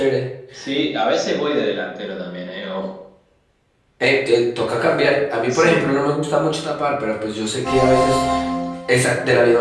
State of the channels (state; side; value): identical; both; correlation 1.00